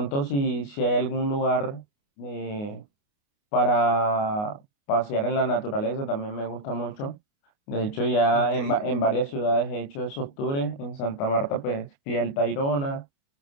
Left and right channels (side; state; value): right; late; 29 ms